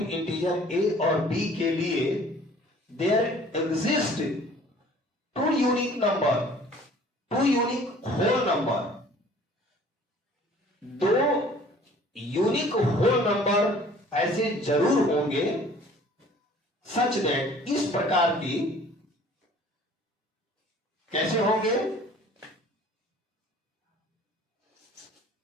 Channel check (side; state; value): both; normal; correlation 0.52